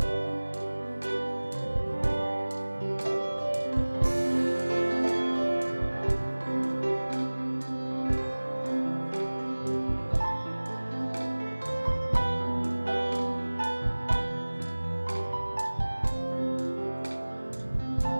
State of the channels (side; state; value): both; inverted; correlation -1.00